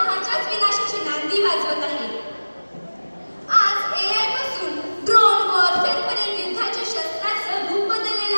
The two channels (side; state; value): both; inverted; correlation -1.00